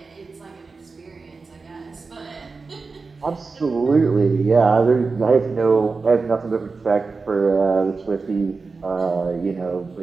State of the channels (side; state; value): left; quieter; 4.3 dB